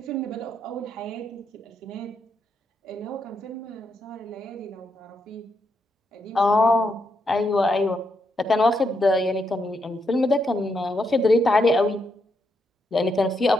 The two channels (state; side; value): normal; both; correlation 0.81